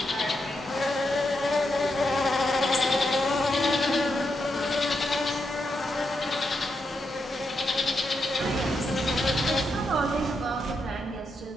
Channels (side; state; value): both; normal; correlation 0.83